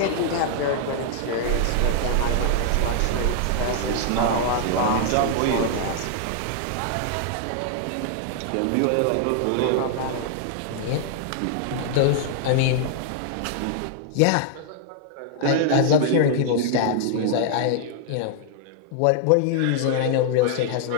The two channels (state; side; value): different; both; correlation -0.01